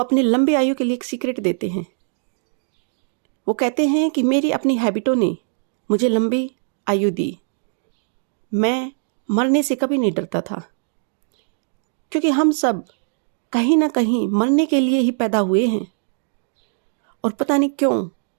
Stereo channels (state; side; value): silent; left; digital silence